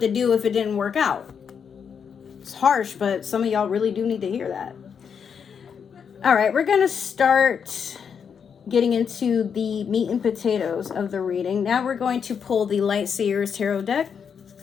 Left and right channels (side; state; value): right; quieter; 6.9 dB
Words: to do if it didn't work out. It's harsh, but some of y'all really do need to hear that. All right, we're going to start getting into the meat and potatoes of the reading. Now we're going to pull the Light Seers Tarot deck.